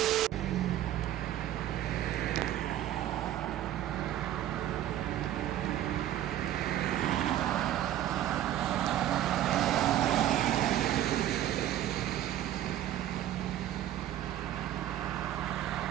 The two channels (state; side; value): quieter; left; 12.5 dB